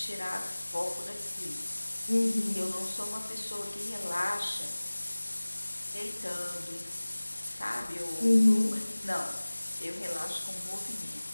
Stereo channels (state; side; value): inverted; both; correlation -1.00